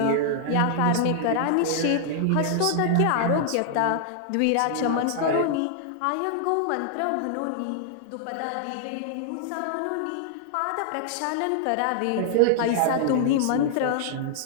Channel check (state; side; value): different; both; correlation -0.01